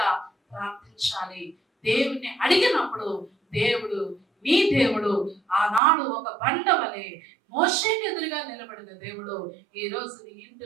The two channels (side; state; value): left; drops out; at 5.8 s